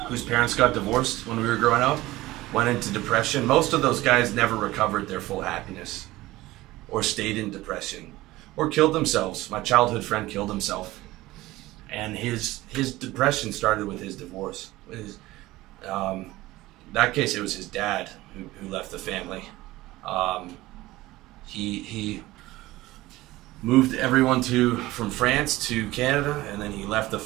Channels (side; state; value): left; quieter; 18.0 dB